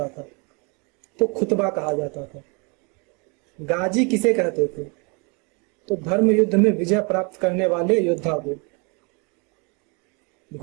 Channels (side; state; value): left; quieter; 31.8 dB